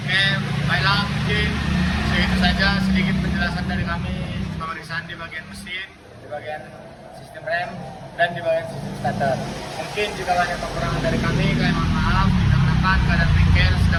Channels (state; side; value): identical; both; correlation 1.00